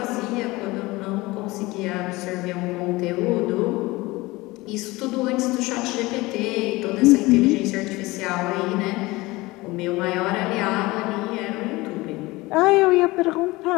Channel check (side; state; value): right; quieter; 21.1 dB